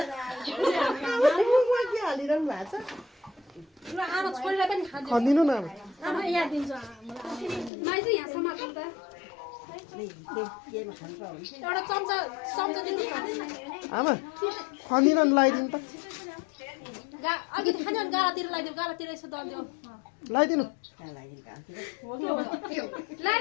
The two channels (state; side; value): drops out; right; at 7.7 s